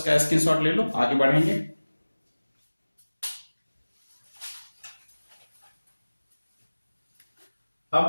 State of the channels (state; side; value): inverted; both; correlation -1.00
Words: स्क्रीनशॉट ले लो, आगे बढ़ेंगे। अब